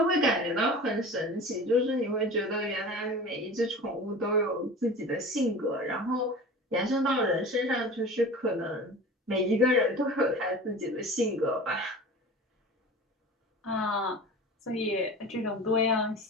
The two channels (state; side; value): normal; both; correlation 0.36